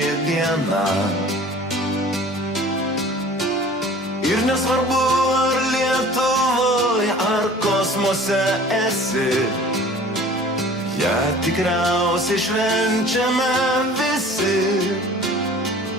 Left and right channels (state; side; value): normal; both; correlation 0.46